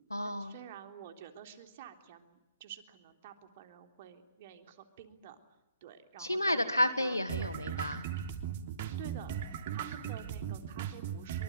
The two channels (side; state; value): both; inverted; correlation -0.68